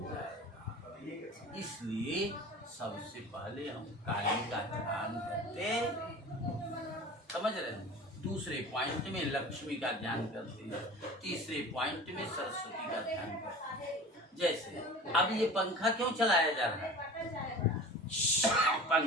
जाएगा। इसलिए सबसे पहले हम काली का ध्यान करते, समझ रहे हैं। दूसरे पॉइंट में लक्ष्मी का ध्यान करते हैं, तीसरे पॉइंट में सरस्वती का ध्यान करते हैं। जैसे अब ये पंखा क्यों चलाया जा रहा है?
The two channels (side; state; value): both; normal; correlation 0.38